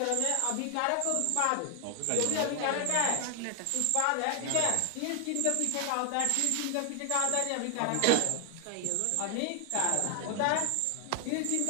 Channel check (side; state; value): both; different; correlation 0.00